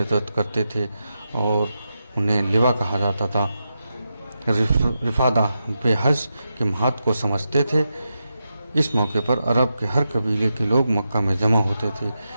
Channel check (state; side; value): inverted; both; correlation -0.88